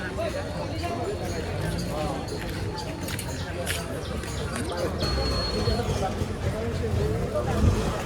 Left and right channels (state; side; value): identical; both; correlation 1.00